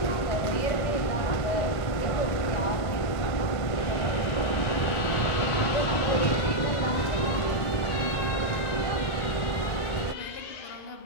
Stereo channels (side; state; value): right; late; 1.5 ms